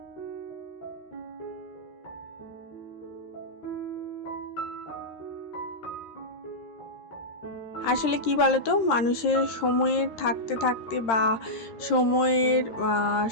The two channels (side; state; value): right; late; 13 ms